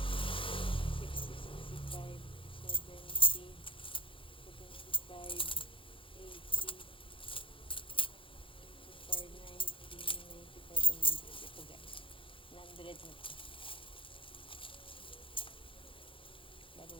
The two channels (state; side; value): late; right; 0.25 ms